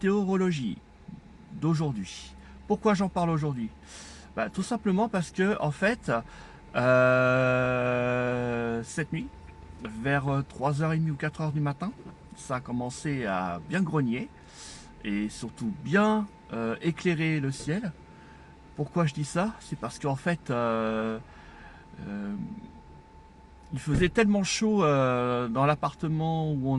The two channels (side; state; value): both; identical; correlation 1.00